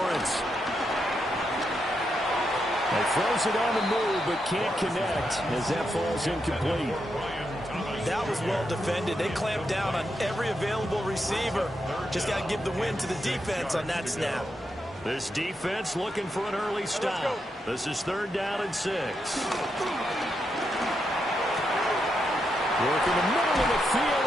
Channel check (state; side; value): normal; both; correlation 0.83